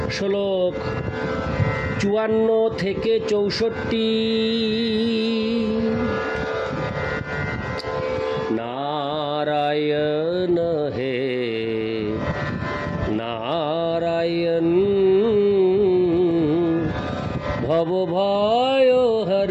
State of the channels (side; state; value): both; identical; correlation 1.00